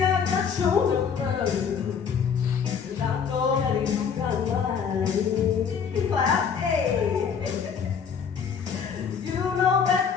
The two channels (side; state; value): right; quieter; 6.8 dB